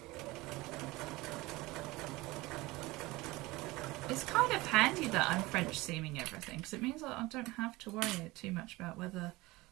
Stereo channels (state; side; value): quieter; left; 20.9 dB